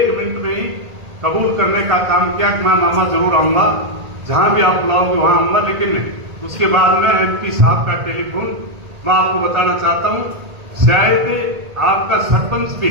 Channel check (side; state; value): left; late; 1.9 ms